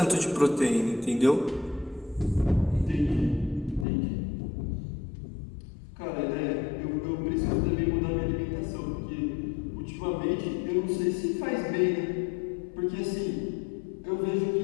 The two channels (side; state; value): right; drops out; at 3.9 s